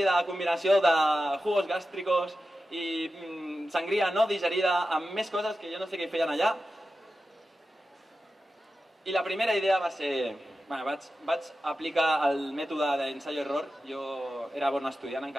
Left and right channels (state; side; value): normal; both; correlation 0.92